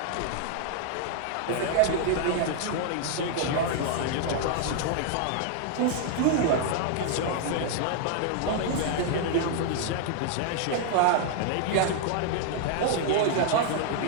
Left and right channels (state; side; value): different; both; correlation 0.00